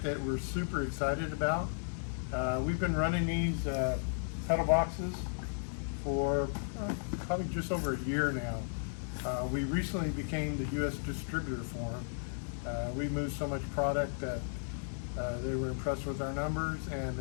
that we're super excited about. We've been running these pedal boxes for probably just over a year now. We recently became the U.S. distributor for them. We moved so much product that they were impressed with our numbers, and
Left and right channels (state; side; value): silent; right; digital silence